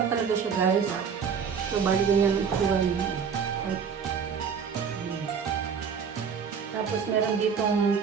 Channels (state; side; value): quieter; left; 6.6 dB